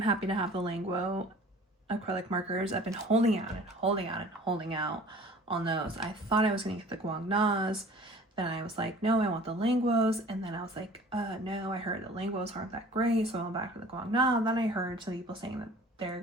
happy to have the Languo acrylic markers. I've been holding out on those. I thought I was going to get the Guangnas. Then I was like, no, I want the Languos. And then I was like, no, I heard the Languos aren't that great, so I went back to the Guangna. Then I heard some people saying that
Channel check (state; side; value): normal; both; correlation 0.47